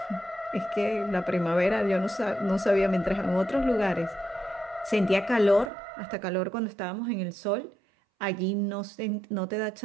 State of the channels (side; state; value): left; drops out; at 5.7 s